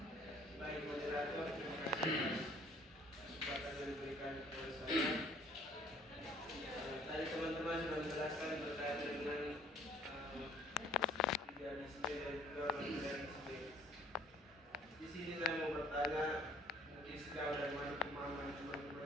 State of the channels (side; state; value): both; normal; correlation 0.57